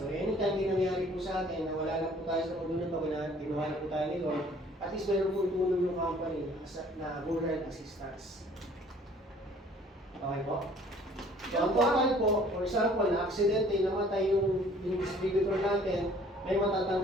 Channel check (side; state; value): both; normal; correlation 0.55